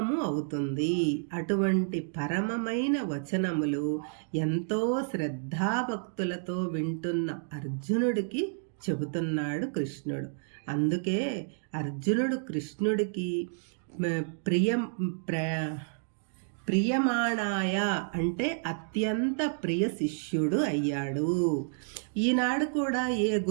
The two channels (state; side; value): silent; left; digital silence